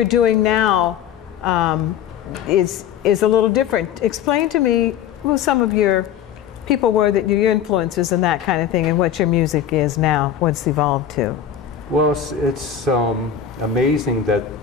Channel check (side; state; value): right; quieter; 9.0 dB